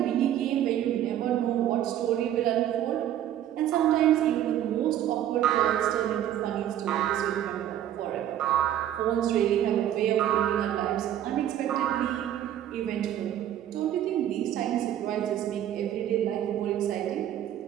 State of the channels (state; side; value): quieter; left; 11.4 dB